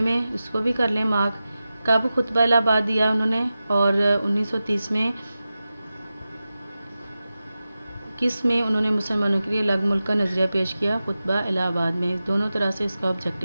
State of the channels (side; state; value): both; inverted; correlation -0.94